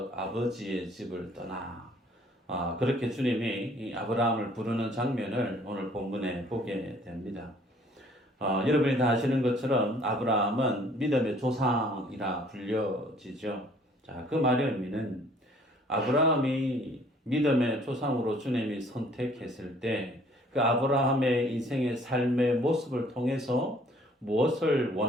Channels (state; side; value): normal; both; correlation 0.58